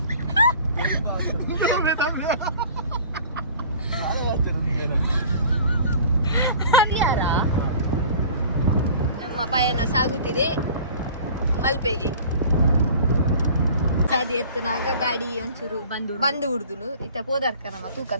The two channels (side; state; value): both; inverted; correlation -0.45